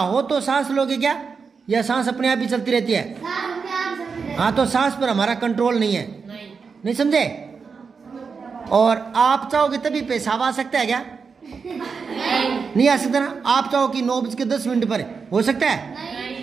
तो सांस लोगे क्या, या सांस अपने आप ही चलती रहती है? हाँ, तो सांस पर हमारा कंट्रोल नहीं है, नहीं समझे? और आप चाहोगे तभी पेशाब आ सकता है क्या? नहीं आ सकता ना। आप चाहो कि 9:10 पर हो सकता है?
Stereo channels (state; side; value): quieter; left; 5.4 dB